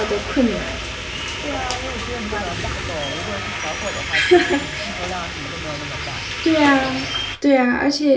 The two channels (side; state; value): both; identical; correlation 1.00